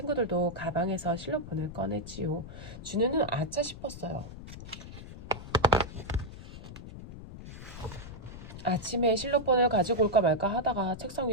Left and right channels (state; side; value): noise; left; rumble, 13 dB below the sound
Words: 가방에서 실로폰을 꺼냈지요. 준우는 아차 싶었어요. 아침에 실로폰을 가지고 올까 말까 하다가 책상